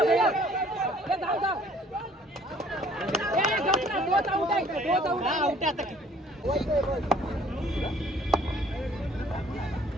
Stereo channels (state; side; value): normal; both; correlation 0.57